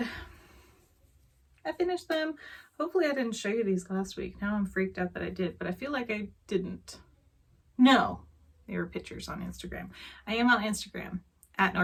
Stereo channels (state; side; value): identical; both; correlation 1.00